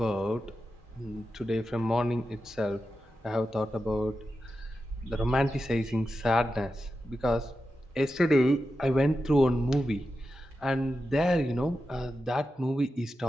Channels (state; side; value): normal; both; correlation 0.90